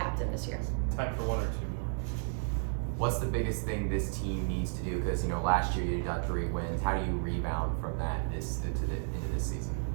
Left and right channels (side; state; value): left; silent; digital silence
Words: this year. Time for one or two more. What's the biggest thing this team needs to do? Because last year you got 3 wins. How do you rebound from that into this season?